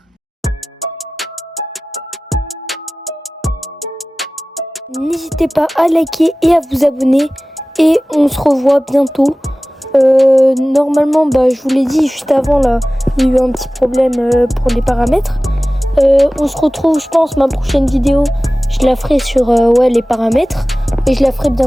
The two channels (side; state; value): both; normal; correlation 0.97